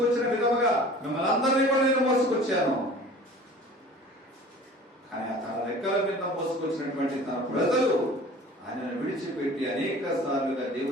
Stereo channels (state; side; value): normal; both; correlation 0.44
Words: విధముగా మిమ్మల్ని అందరినీ కూడా నేను మోసుకొచ్చాను. కానీ తన రెక్కల మీద మోసుకొచ్చినటువంటి తన ప్రజలు ఆయనను విడిచిపెట్టి అనేక సార్లుగా